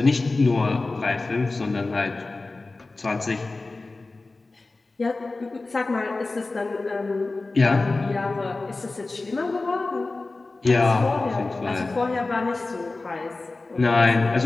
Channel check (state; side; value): quieter; right; 3.4 dB